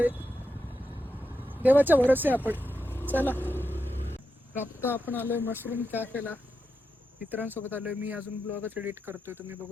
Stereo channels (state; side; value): normal; both; correlation 0.87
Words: देवाच्या भरोसे आपण. चला. आता आपण आलोय मशरूम कॅफेला. मित्रांसोबत आलोय. मी अजून ब्लॉगच एडिट करतोय, तुम्ही